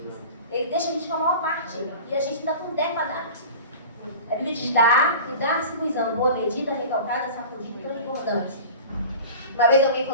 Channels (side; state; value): both; inverted; correlation -0.37